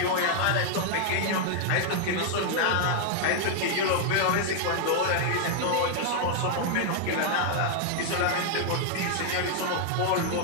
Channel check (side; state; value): both; different; correlation 0.00